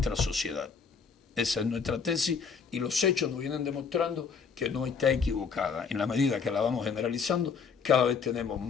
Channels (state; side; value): quieter; right; 5.8 dB